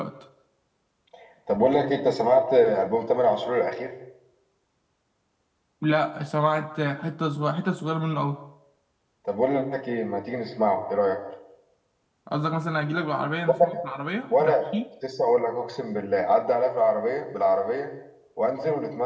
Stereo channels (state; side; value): identical; both; correlation 1.00